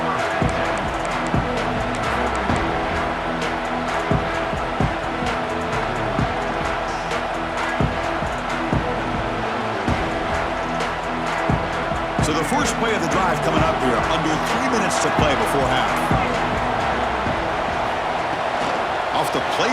So the first play of the drive coming up here, under 3 minutes to play before half. Off the play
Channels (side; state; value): both; identical; correlation 1.00